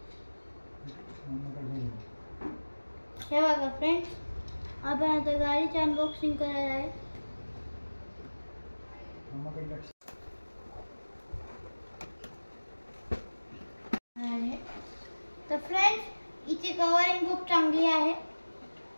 हे बघा फ्रेंड्स, आपण आता गाडीची अनबॉक्सिंग करायला आहे. तर फ्रेंड्स, हिची कवरिंग खूप चांगली आहे.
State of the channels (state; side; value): inverted; both; correlation -1.00